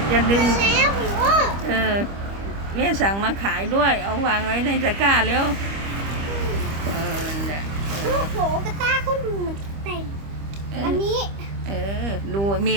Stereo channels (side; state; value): left; late; 25 ms